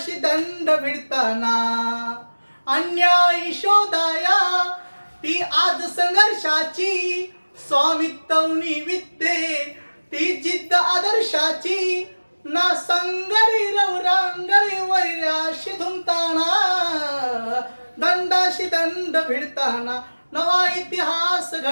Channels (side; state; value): both; inverted; correlation -1.00